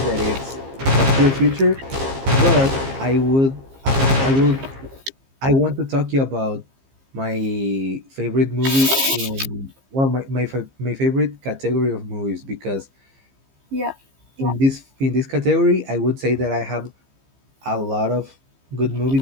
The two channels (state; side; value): late; left; 15 ms